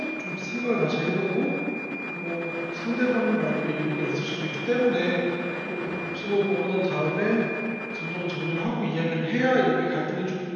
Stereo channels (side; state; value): both; identical; correlation 1.00